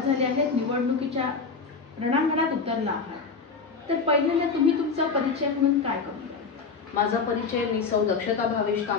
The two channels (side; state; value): right; quieter; 4.9 dB